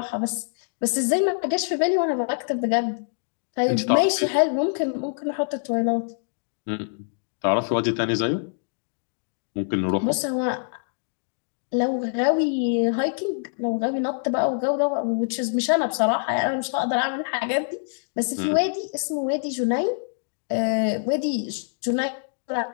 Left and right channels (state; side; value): silent; right; digital silence